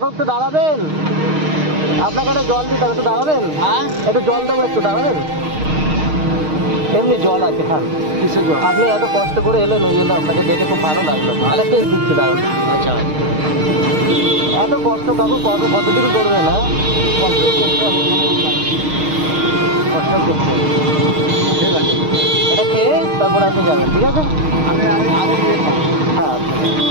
একটু দাঁড়াবেন, আপনাকে একটা জল দিতে হবে, একটু দাঁড়াবেন। হ্যাঁ, একটু জল দেবো, একটু দাঁড়াবেন। এমনি জল আছে, খান। কিসের জল? আপনি এত কষ্ট করে এলেন, ওই জন্য আপনাকে দেখে খুব ভালো লাগলো। আরেকটা দিচ্ছি, দাঁড়ান। আচ্ছা, এত কষ্ট কাকু কতদিন করবে না? কষ্ট করতে হবে, কষ্ট করতে হবে। ঠিক আছে, এটা খেয়ে তারপরে আপনি যাবেন, ঠিক আছে? আমি আগে দিয়ে খাবো। হ্যাঁ,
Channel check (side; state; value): left; late; 6.5 ms